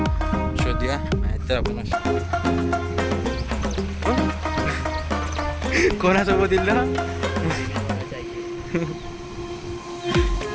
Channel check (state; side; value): identical; both; correlation 1.00